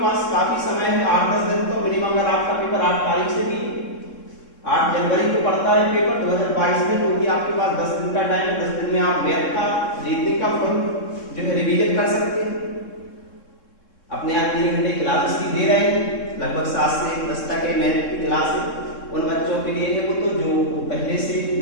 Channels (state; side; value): late; right; 3.7 ms